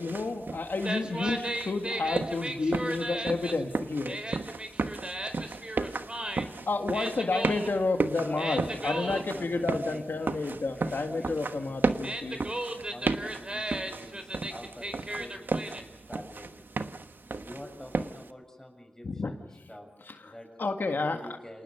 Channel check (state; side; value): normal; both; correlation 0.85